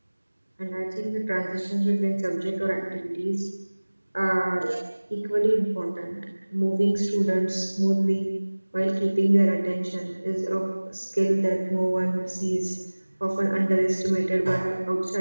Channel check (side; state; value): both; inverted; correlation -1.00